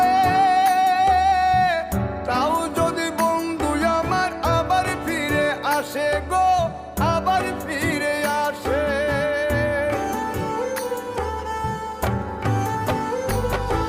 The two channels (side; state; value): both; identical; correlation 1.00